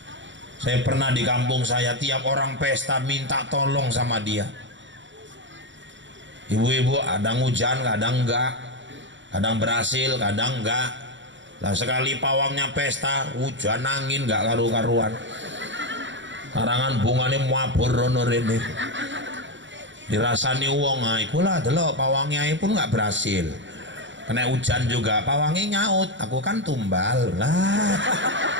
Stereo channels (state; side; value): late; left; 0.54 ms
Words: Saya pernah di kampung saya, tiap orang pesta minta tolong sama dia. Ibu-ibu kadang hujan, kadang enggak, kadang berhasil, kadang enggak. Lah sekali pawangnya pesta, hujan angin enggak karu-karuan. Karangan bunganya mabur rono rene. Dirasani wong, nah ikulah delok pawangnya pun enggak berhasil. Kena hujan juga, pawangnya nyaut, aku kan tumbal lah.